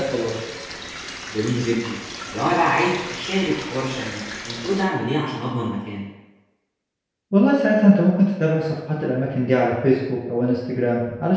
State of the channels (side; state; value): both; identical; correlation 1.00